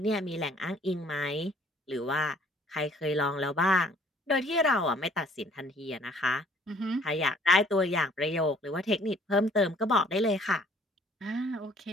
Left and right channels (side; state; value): both; normal; correlation 0.57